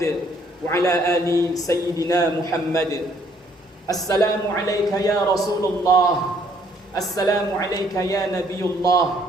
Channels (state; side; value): normal; both; correlation 0.65